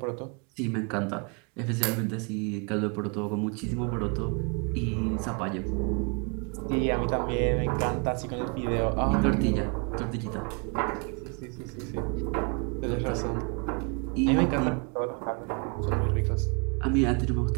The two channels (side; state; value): left; quieter; 34.4 dB